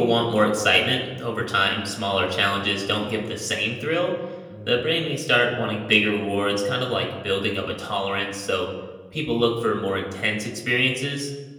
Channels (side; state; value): both; identical; correlation 1.00